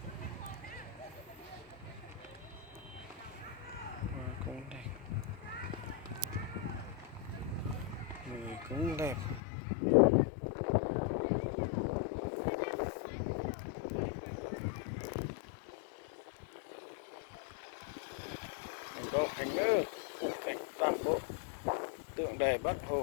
Hoa cũng đẹp, người cũng đẹp. Mình có hành nữa, khung cảnh toàn bộ tượng đài Bác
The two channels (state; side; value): drops out; right; at 9.4 s